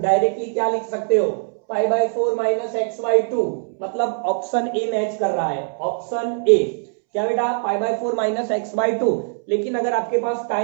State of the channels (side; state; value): left; silent; 65 dB below the other